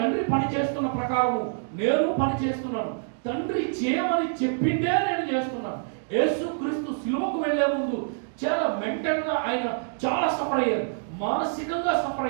పని చేస్తున్న ప్రకారము నేను పని చేస్తున్నాను, తండ్రి చేయమని చెప్పిందే నేను చేస్తున్నాను. యేసు క్రీస్తు సిలువకు వెళ్లే ముందు చాలా మెంటల్గా ఆయన చాలా సఫర్ అయ్యారు, మానసికంగా సఫర్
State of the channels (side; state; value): left; silent; digital silence